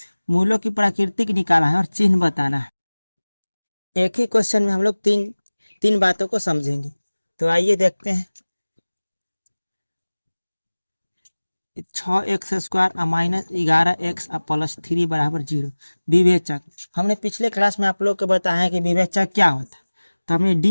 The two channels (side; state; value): both; inverted; correlation -1.00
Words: मूलों की प्राकृतिक निकालना है और चिन्ह बताना है। एक ही क्वेश्चन में हम लोग तीन बातों को समझेंगे। तो आइए देखते हैं। 6x² - 11x + 3 = 0 विवेचक। हमने पिछले क्लास में आप लोग को बताया कि विवेचक क्या होता है। तो हमने